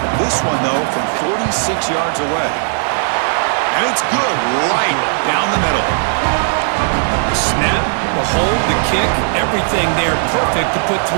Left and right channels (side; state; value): left; silent; 69 dB below the other